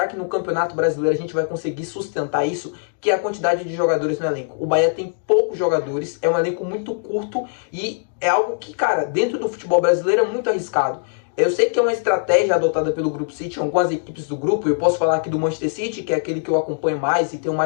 que no Campeonato Brasileiro a gente vai conseguir sustentar isso? Que é a quantidade de jogadores no elenco. O Bahia tem poucos jogadores, é um elenco muito curto e é algo que, cara, dentro do futebol brasileiro é muito arriscado. Eu sei que é uma estratégia adotada pelo Grupo City, algumas equipes do grupo. Eu posso falar aqui do Manchester City, que é aquele que eu acompanho mais e tenho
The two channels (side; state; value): right; silent; digital silence